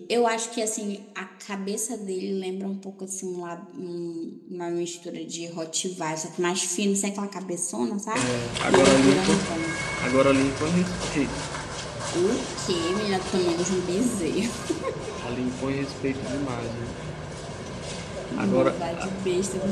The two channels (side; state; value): both; identical; correlation 1.00